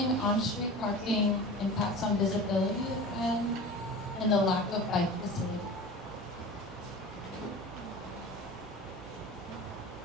on-street parking, impacts on visibility, and the lack of bike facility.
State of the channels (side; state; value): both; normal; correlation 0.35